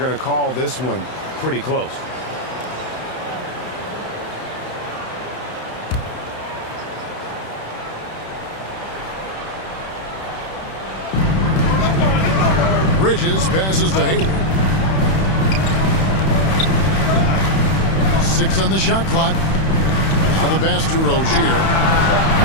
to call this one pretty close. Bridges passes to Hayward. 6 on the shot clock. Now the pass to Rozier.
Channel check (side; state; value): right; late; 31 ms